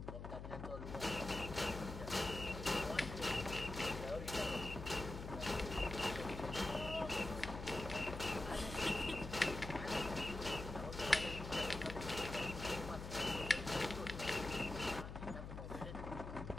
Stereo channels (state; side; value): noise; left; hum, 8 dB below the sound